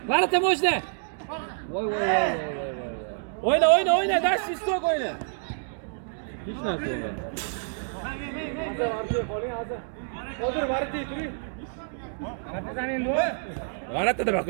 Varata mo'jda. Voy. O'yna, dash istok o'yna. Hech narsa yo'q. Hozir varata turing. Varata deb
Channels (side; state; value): left; silent; digital silence